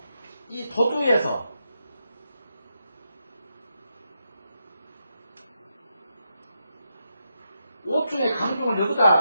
이 도두에서 옷 중에 강중을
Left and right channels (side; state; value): both; inverted; correlation -0.84